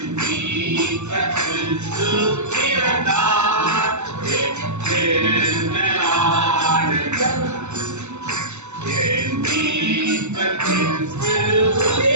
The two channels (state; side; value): late; left; 0.83 ms